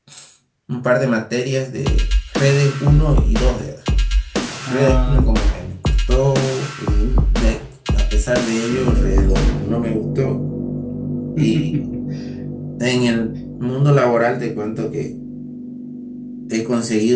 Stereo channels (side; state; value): both; identical; correlation 1.00